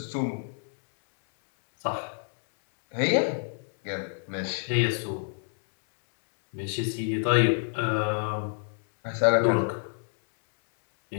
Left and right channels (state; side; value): silent; right; 60 dB below the other